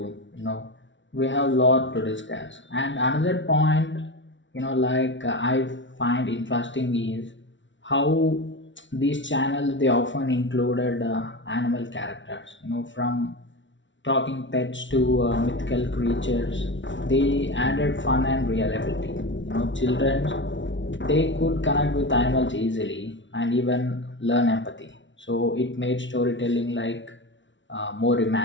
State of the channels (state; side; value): late; right; 0.55 ms